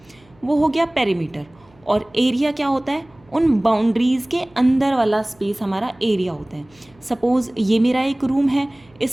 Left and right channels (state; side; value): noise; right; hum, 30 dB below the sound